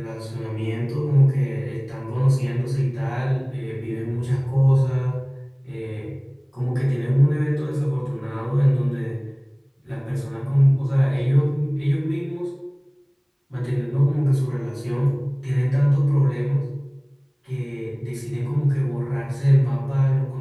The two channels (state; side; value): identical; both; correlation 1.00